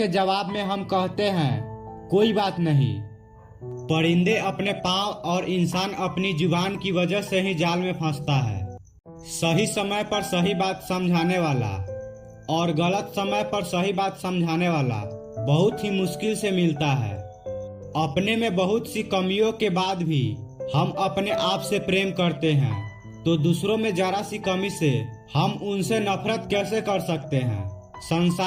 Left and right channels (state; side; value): identical; both; correlation 1.00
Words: जवाब में हम कहते हैं कोई बात नहीं। परिंदे अपने पाँव और इंसान अपनी जुबान की वजह से ही जाल में फंसता है। सही समय पर सही बात समझाने वाला और गलत समय पर सही बात समझाने वाला बहुत ही मुश्किल से मिलता है। अपने में बहुत सी कमियों के बाद भी हम अपने आप से प्रेम करते हैं, तो दूसरों में जरा सी कमी से हम उनसे नफरत कैसे कर सकते हैं।